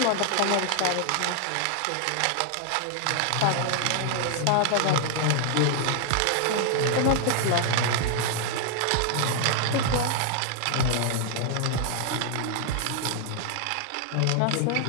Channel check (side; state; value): both; different; correlation 0.00